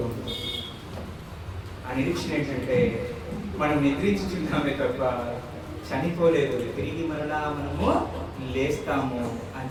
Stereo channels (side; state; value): both; identical; correlation 1.00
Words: ఉంటాం. ఆ నిరీక్షణ ఏంటంటే మనం నిద్రించుచున్నామే తప్ప చనిపోలేదు, తిరిగి మరలా మనము లేస్తాము అని